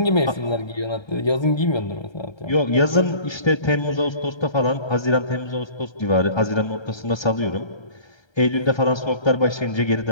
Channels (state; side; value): late; right; 1.3 ms